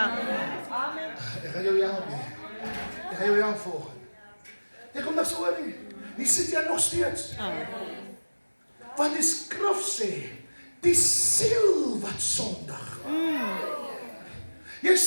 Ek gaan jou help nie. Ek gaan jou help volgende. Jy kom niks oor nie. Nie sit jy nog steeds. Want die skrif sê, die siel wat sondig. Jy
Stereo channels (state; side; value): inverted; both; correlation -1.00